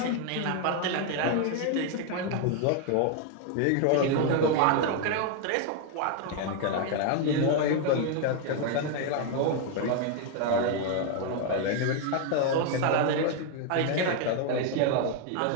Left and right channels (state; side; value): different; both; correlation 0.00